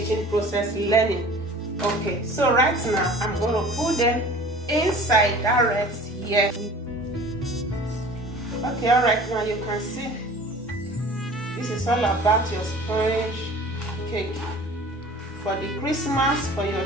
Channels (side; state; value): both; normal; correlation 0.44